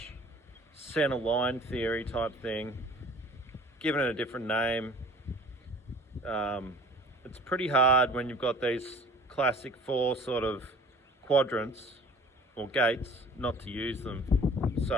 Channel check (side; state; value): both; normal; correlation 0.47